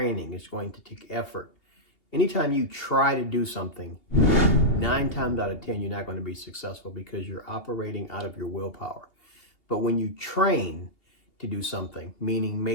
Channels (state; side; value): late; right; 2.8 ms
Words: It's going to take effort. Anytime you try to do something, 9 times out of 10, you're not going to be successful because you're operating out of your willpower. But when you train to do something, meaning